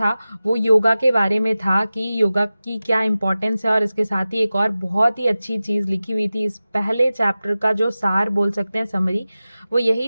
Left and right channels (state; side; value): inverted; both; correlation -0.95